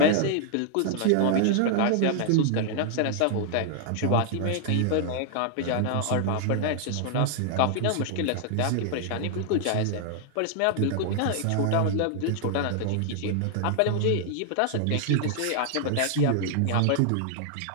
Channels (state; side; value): different; both; correlation 0.00